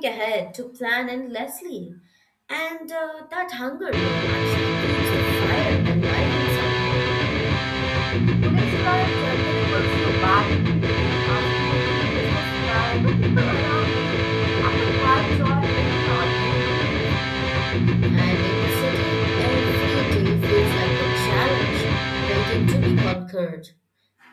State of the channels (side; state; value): both; identical; correlation 1.00